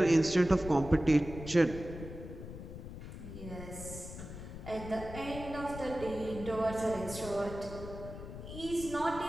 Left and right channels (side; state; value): left; noise; rumble, 11 dB below the sound